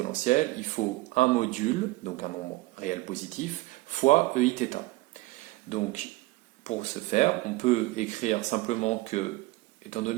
il faut un module, donc un nombre réel positif, fois EI θ. Donc pour ce faire, on peut écrire simplement que, étant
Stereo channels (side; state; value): left; quieter; 20.8 dB